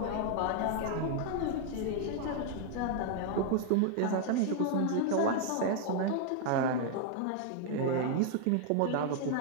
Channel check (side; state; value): both; different; correlation 0.00